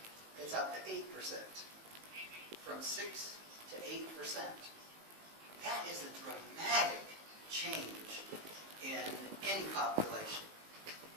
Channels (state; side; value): late; left; 19 ms